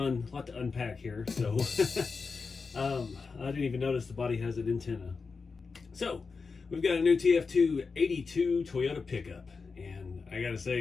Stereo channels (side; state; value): right; quieter; 4.7 dB